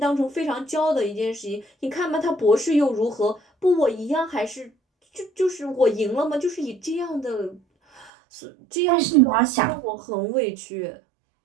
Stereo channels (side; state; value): left; drops out; at 8.1 s